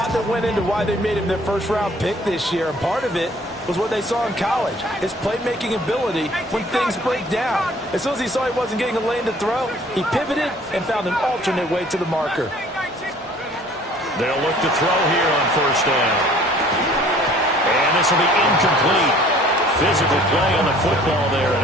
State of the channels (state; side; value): normal; both; correlation 0.54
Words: that went into why they made him their first-round pick this year. And part of it was what they saw in college, his playmaking ability when things break down. As soon as he saw he wasn't getting a lane to throw, he pivoted and found an alternate way to the marker. They'll look to throw here on first down. And this will be incomplete. Physical play on the football there,